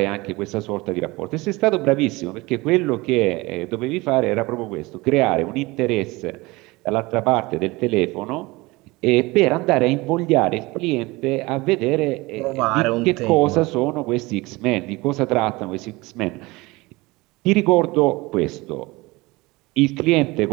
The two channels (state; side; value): quieter; left; 22.4 dB